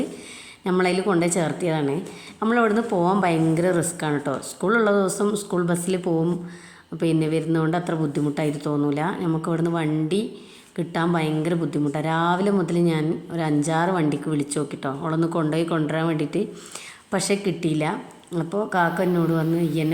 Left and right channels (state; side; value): identical; both; correlation 1.00